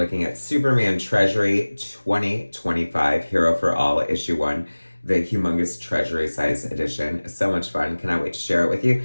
at Superman Treasury 2025, Hero for All, Issue 1, the humongous Treasury size edition. So much fun. Cannot wait to share it with you.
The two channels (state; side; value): inverted; both; correlation -1.00